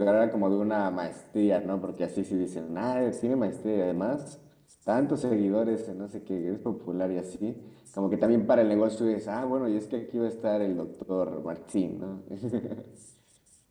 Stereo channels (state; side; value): identical; both; correlation 1.00